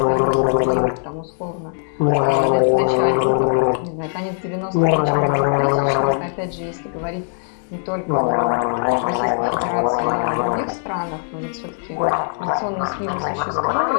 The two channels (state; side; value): silent; right; 66 dB below the other